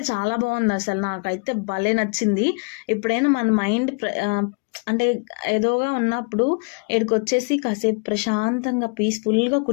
చాలా బాగుంది అసలు. నాకైతే భలే నచ్చింది. ఎప్పుడైనా మన మైండ్ అంటే ఏదోగా ఉన్నప్పుడు ఈడికొచ్చేసి కాసేపు ప్రశాంతంగా పీస్ఫుల్గా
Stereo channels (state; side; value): quieter; right; 34.1 dB